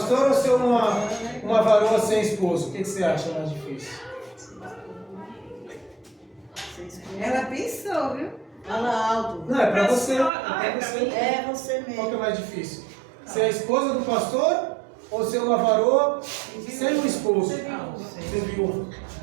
ou ser uma varoa sem esposo? O que você acha mais difícil? Ela pensou, viu? Fala alto. Não, é pra você. Ah, É é pra pra você. mim. É você Qual que mesmo. é mais difícil? Ser a esposa do pastor ou ser uma varoa sem um esposo? Ser viúva.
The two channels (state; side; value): drops out; left; at 10.3 s